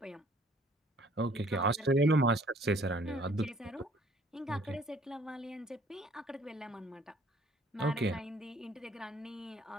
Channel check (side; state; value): both; normal; correlation 0.59